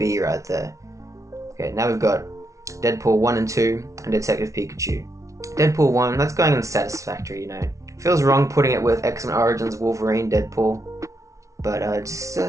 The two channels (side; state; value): left; late; 0.15 ms